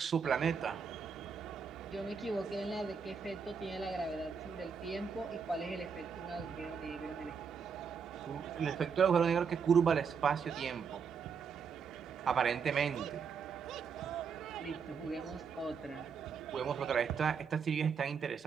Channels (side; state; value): left; quieter; 6.2 dB